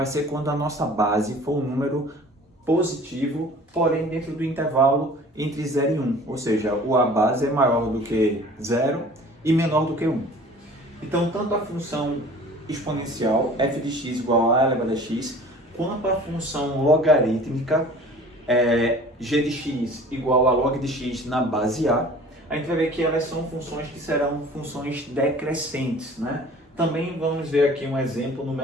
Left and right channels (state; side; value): normal; both; correlation 0.46